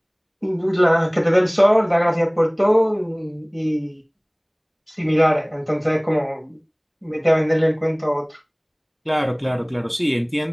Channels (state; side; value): identical; both; correlation 1.00